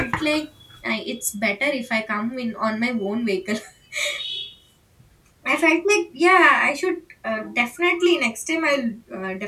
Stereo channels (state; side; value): identical; both; correlation 1.00